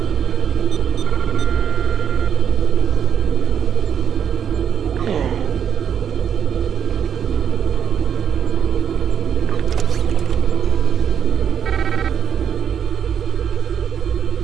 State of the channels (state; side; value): quieter; left; 8.3 dB